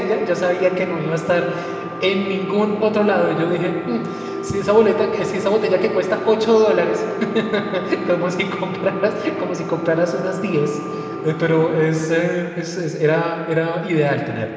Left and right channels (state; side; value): identical; both; correlation 1.00